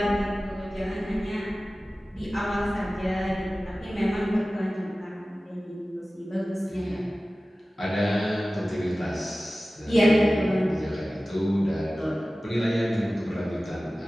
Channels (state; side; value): normal; both; correlation 0.96